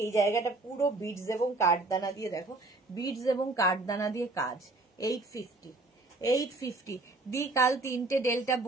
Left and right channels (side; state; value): left; quieter; 3.0 dB